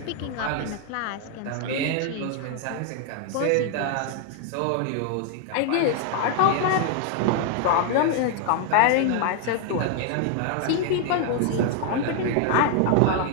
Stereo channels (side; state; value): both; different; correlation 0.00